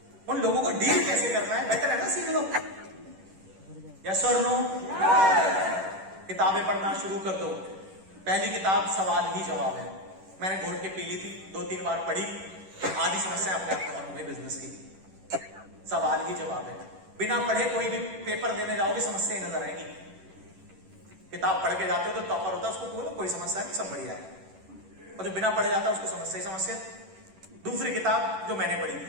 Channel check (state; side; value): late; left; 10 ms